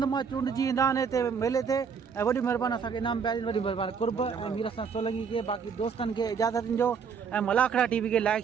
मां चूंडजी ईंदा आहिनि हिते मेले ते ऐं वॾी महिरबानी असांखे इनाम पिया ॾियनि वॾी महिरबानी कुर्ब ऐं मीर हसन सोलंकी खे बाक़ी दोस्तनि खे इजाज़त ॾिजो ऐं मलाखड़ा टीवी खे लाइक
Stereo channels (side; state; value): left; quieter; 6.3 dB